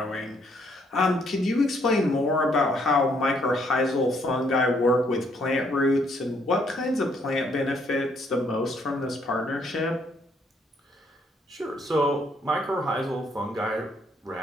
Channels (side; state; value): both; normal; correlation 0.69